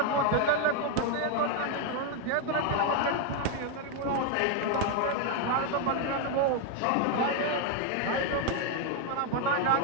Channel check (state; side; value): different; both; correlation 0.01